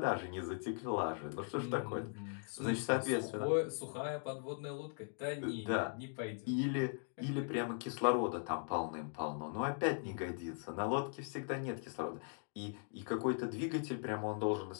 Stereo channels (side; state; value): right; silent; 51 dB below the other